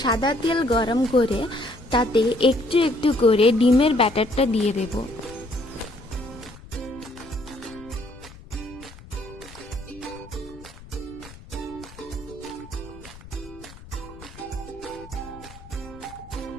সাদা তেল গরম করে তাতে একটু একটু করে ডিমের ব্যাটারটা দিয়ে দেব।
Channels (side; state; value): left; noise; rumble, 19 dB below the sound